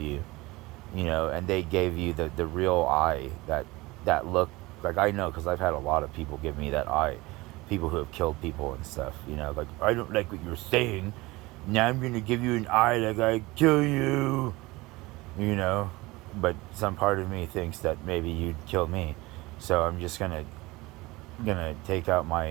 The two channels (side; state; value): left; quieter; 21.5 dB